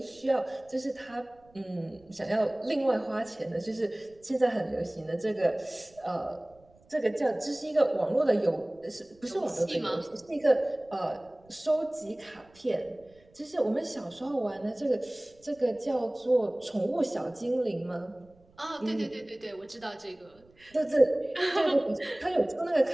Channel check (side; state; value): right; noise; rumble, 30 dB below the sound